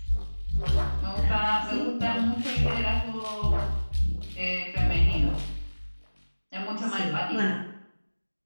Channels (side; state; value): both; inverted; correlation -1.00